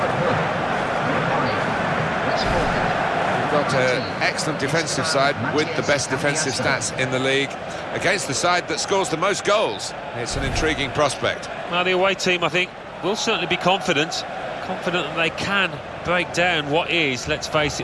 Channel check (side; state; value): both; identical; correlation 1.00